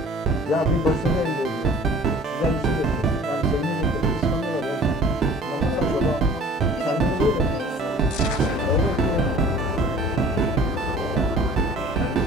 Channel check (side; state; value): both; normal; correlation 0.48